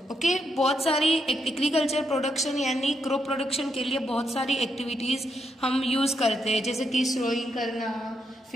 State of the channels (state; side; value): normal; both; correlation 0.80